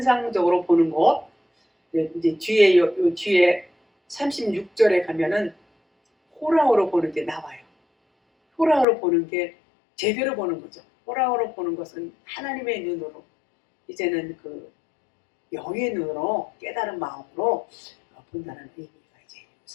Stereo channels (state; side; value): drops out; right; at 8.8 s